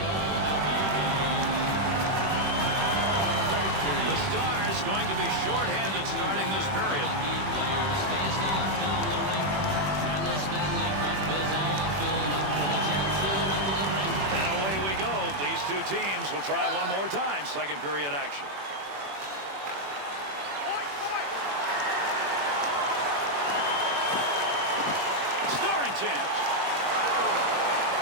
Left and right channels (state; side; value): late; left; 21 ms